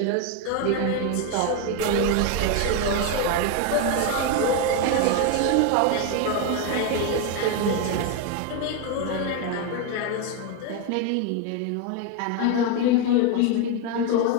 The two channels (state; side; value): different; both; correlation 0.02